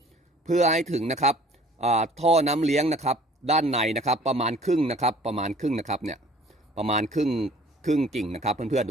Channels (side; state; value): both; normal; correlation 0.52